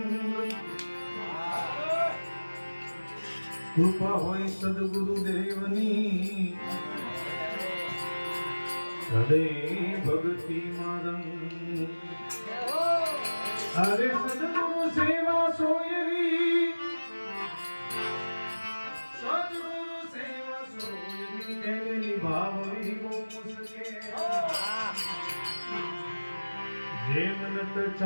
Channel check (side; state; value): both; inverted; correlation -1.00